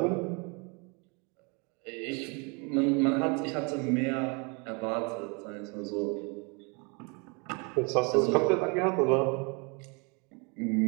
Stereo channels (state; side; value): quieter; left; 32.1 dB